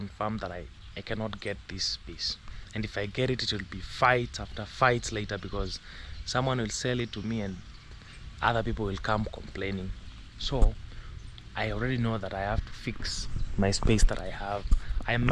that I cannot get this piece, and if I get it, it will be fights after fights later, because someone will sell it to me and other people will come complaining. So I already know that I have to fix my space that I have. I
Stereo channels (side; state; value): both; identical; correlation 1.00